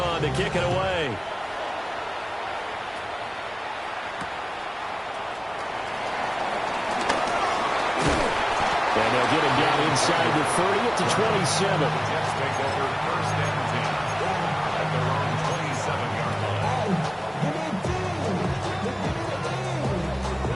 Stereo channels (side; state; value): both; identical; correlation 1.00